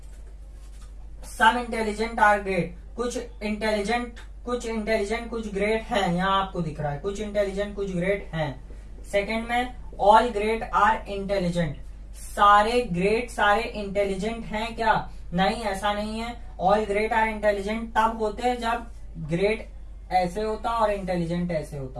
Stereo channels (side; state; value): both; identical; correlation 1.00